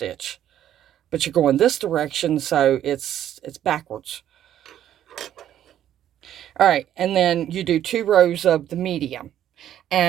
But you're going this direction, so it's backwards. All right, and then you do 2 rows of the medium.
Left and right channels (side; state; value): left; quieter; 11.1 dB